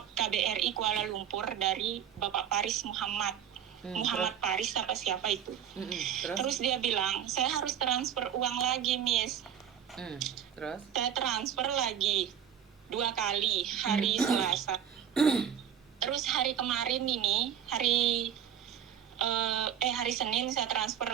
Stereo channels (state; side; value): quieter; left; 9.2 dB